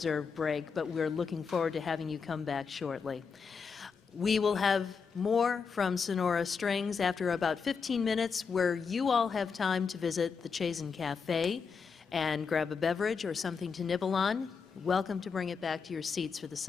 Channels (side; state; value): right; quieter; 5.6 dB